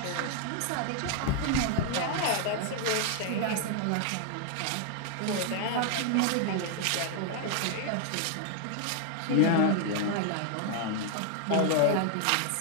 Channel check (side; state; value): both; different; correlation 0.00